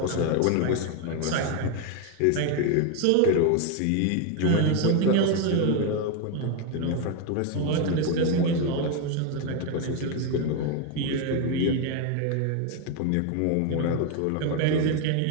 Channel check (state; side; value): different; both; correlation 0.01